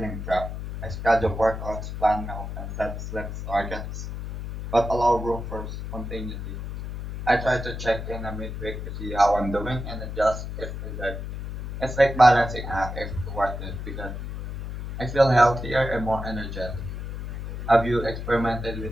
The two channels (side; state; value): left; noise; hum, 7 dB below the sound